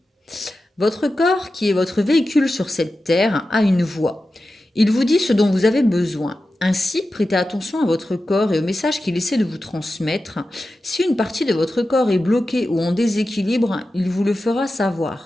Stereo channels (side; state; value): both; normal; correlation 0.93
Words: Votre corps, qui est votre véhicule sur cette terre, a une voix. Il vous dit ce dont vous avez besoin. Ainsi, prêtez attention à votre corps et au message qu'il essaie de vous transmettre. Si une partie de votre corps est bloquée ou en déséquilibre, il vous le fera